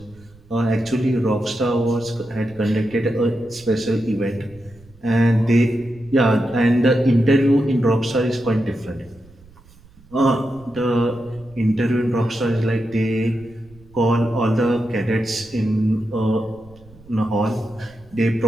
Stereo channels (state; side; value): noise; right; rumble, 25 dB below the sound